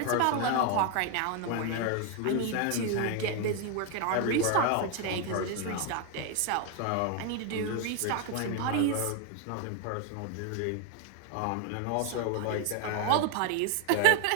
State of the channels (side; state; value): both; different; correlation 0.01